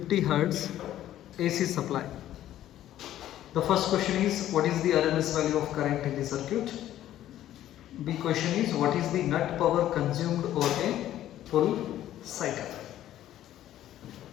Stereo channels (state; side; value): quieter; right; 12.7 dB